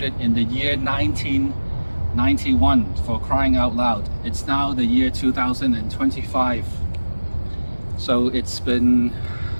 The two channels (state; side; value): inverted; both; correlation -1.00